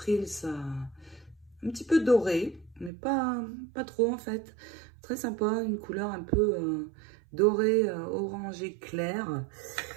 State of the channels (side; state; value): left; drops out; at 2.9 s